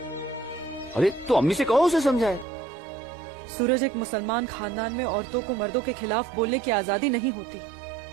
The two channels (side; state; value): left; drops out; at 2.5 s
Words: अरे तो अम्मी से कहो, उसे समझाए। सूरज, एक मुसलमान खानदान में औरतों को मर्दों के खिलाफ बोलने की आजादी नहीं होती।